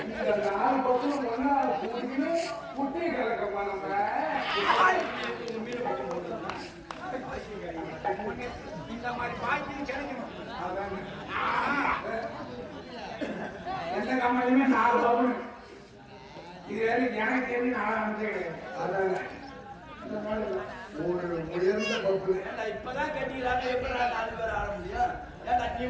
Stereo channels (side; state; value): both; identical; correlation 1.00